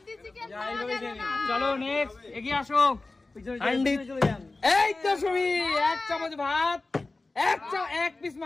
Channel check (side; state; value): right; quieter; 3.3 dB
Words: চিকেন যা, পাওয়া এইভাবে যাবে খেয়ে না। নিন। চলো নেক্সট, এগিয়ে আসো। হান্ডি। চলে যান। এই তো সুমি, 1 চামচ ভাত, 1 পিস